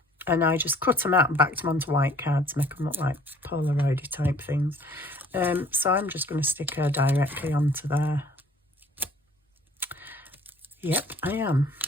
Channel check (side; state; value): both; normal; correlation 0.55